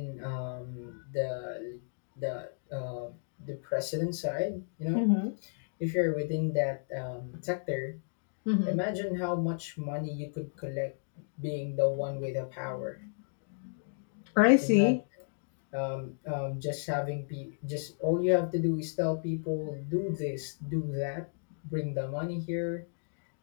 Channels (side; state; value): right; silent; digital silence